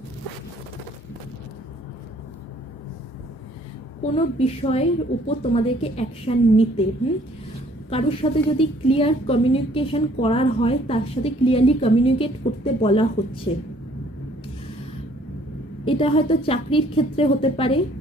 কোনো বিষয়ের উপর তোমাদেরকে অ্যাকশন নিতে, কারোর সাথে যদি ক্লিয়ার কমিউনিকেশন করার হয় তার সাথে ক্লিয়ারলি কমিউনিকেট করতে বলা হচ্ছে। এটা হয়তো চাকরির ক্ষেত্রে হতে পারে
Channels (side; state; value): both; normal; correlation 0.60